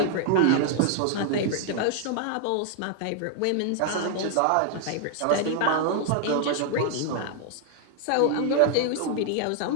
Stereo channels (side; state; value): both; different; correlation 0.00